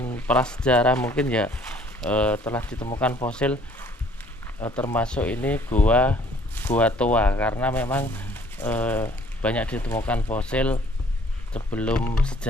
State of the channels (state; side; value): normal; both; correlation 0.58